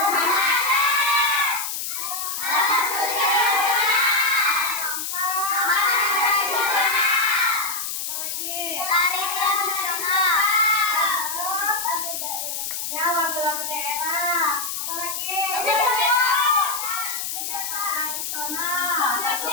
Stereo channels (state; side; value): noise; left; hiss, 4 dB below the sound